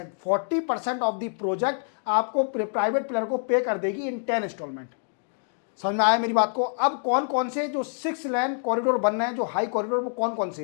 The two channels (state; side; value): silent; right; digital silence